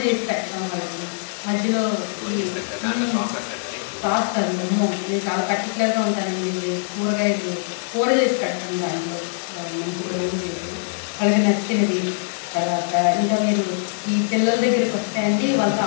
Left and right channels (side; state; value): right; silent; digital silence